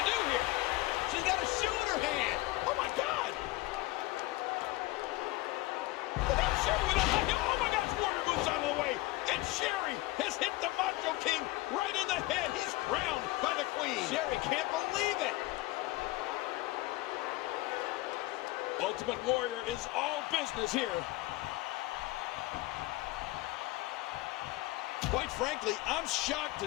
do here? She's got a shoe in her hand. Oh, my God. Look at Sherry with a high heel. Oh, my gosh. Warrior moves out of the way. And Sherry has hit the Macho King right in the head. He's crowned by the Queen. Sherry can't believe it. Ultimate Warrior is all business here. Quite frankly, I'm shocked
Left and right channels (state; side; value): quieter; right; 19.4 dB